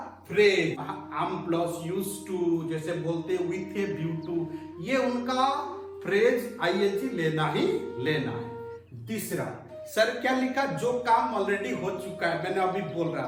phrase, am plus use to, जैसे बोलते विथ ए व्यू टू, ये उनका फ्रेज आईएनजी लेना ही लेना है। तीसरा, सर क्या लिखा, जो काम ऑलरेडी हो चुका है, मैंने अभी बोल रहा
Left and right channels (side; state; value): both; identical; correlation 1.00